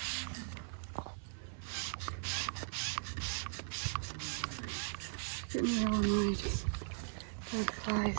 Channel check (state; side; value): silent; left; 52 dB below the other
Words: Getting real annoyed. Bad